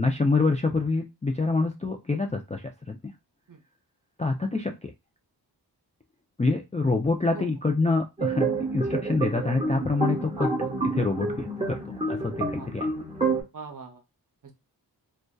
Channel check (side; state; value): both; normal; correlation 0.71